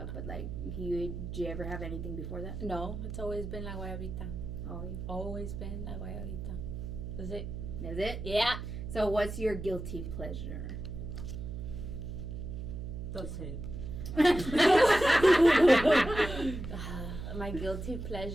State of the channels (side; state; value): right; noise; hum, 7 dB below the sound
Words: but like, did you ever have anything before that? No, it's always been La Guayabita. Oh, Always been La Guayabita. That's it. is it? Yeah. So, what's your guilty pleasure? Don't say it. My guilty